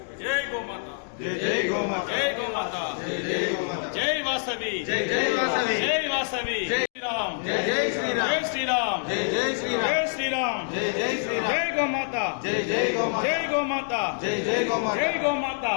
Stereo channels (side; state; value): right; silent; digital silence